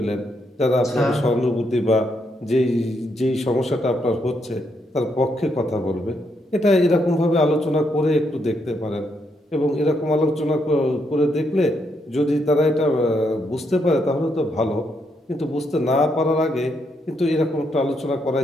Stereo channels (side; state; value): both; normal; correlation 0.77